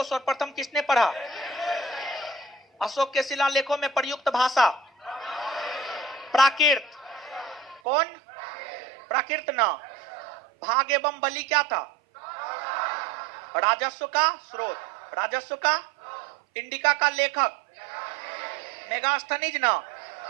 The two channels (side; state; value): left; drops out; at 7.8 s